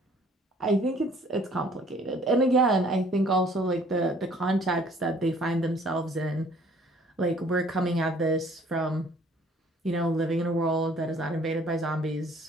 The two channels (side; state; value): both; normal; correlation 0.57